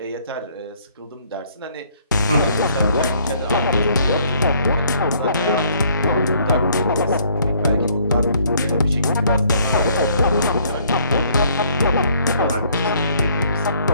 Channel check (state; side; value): inverted; both; correlation -0.64